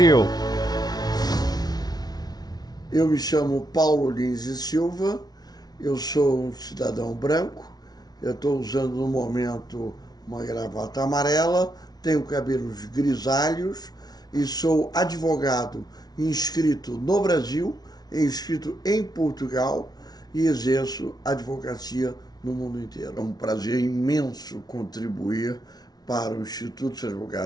Eu me chamo Paulo Lins e Silva, eu sou um cidadão branco, eu estou usando no momento uma gravata amarela, tenho cabelos grisalhos e sou advogado inscrito no Brasil, inscrito em Portugal e exerço advocacia no mundo inteiro. É um prazer imenso contribuir para o Instituto dos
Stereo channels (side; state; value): right; late; 0.19 ms